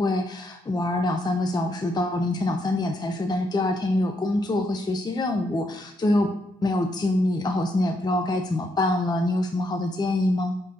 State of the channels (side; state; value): both; normal; correlation 0.77